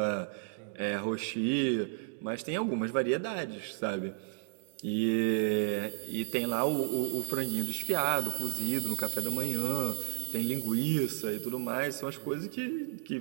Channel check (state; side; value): silent; left; digital silence